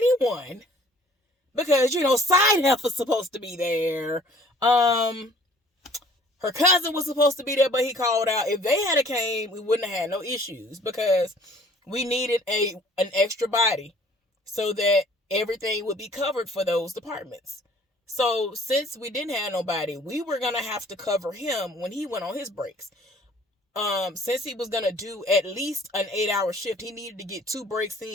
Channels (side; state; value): both; normal; correlation 0.55